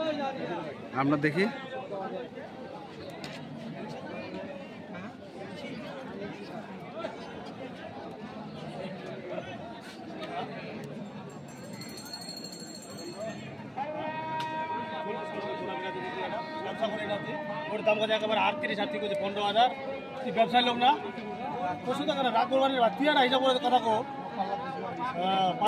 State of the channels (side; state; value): both; identical; correlation 1.00